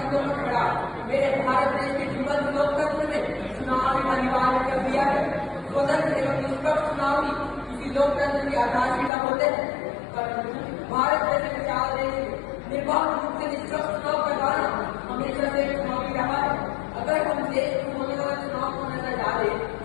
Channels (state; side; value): drops out; right; at 9.1 s